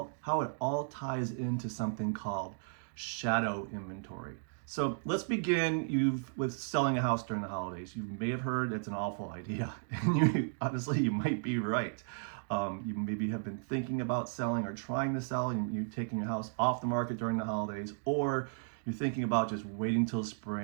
it all ties into something called shadow inventory. So let's begin with selling a house during the holidays. You may have heard that's an awful idea, and honestly, you might be right. You maybe have been thinking about selling or trying to sell, and you're taking your house off the market during the holidays, or you're thinking about just waiting till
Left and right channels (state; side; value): silent; left; digital silence